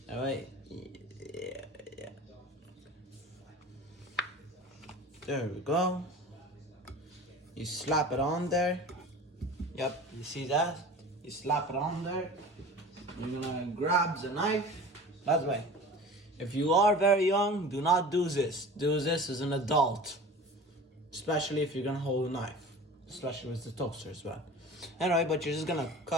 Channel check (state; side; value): normal; both; correlation 0.39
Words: Alright, yeah. There we go. You slap it on there. Yep, you see that? You slap it on there. You're gonna grab the knife. By the way, if you are very young, do not do this. Do this as an adult. Especially if you're gonna hold a knife. Especially with the toaster as well. Anyway, but you're just gonna